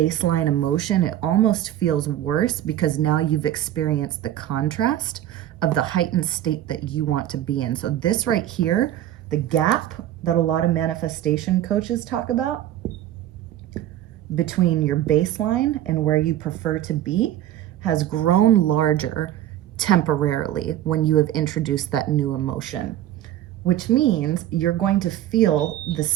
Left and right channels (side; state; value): left; quieter; 12.5 dB